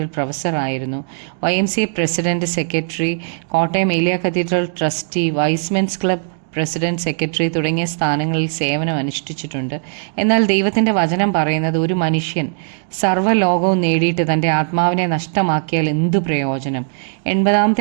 പ്രൊഫസറായിരുന്നു. YMCA president, secretary, Kottayam Eliya cathedral trustee, Y's Men's club president, secretary തുടങ്ങിയ സ്ഥാനങ്ങളിൽ സേവനം അനുഷ്ഠിച്ചിട്ടുണ്ട്. എന്നാൽ ദൈവത്തിൻ്റെ വചനം പറയുന്നത് ഒരു മനുഷ്യൻ സർവ്വലോകവും നേടിയിട്ട് തൻ്റെ ആത്മാവിനെ നഷ്ടമാക്കിയാൽ എന്തു പ്രയോജനം?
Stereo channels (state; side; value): silent; left; 67 dB below the other